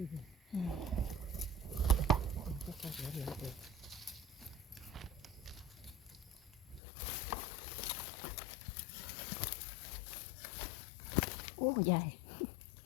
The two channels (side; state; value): right; drops out; at 6.8 s